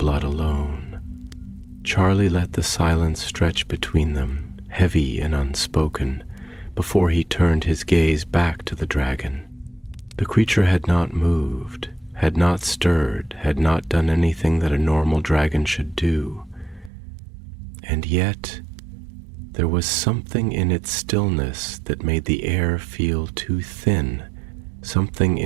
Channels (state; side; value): drops out; left; at 16.9 s